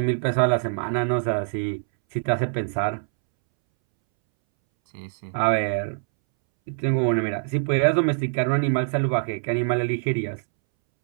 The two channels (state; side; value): silent; left; 63 dB below the other